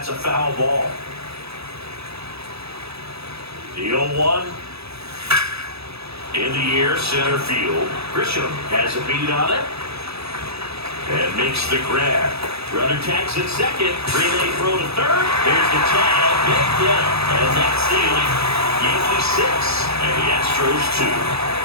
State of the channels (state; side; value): late; left; 0.78 ms